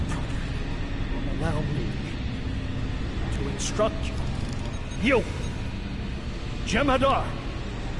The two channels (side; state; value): both; identical; correlation 1.00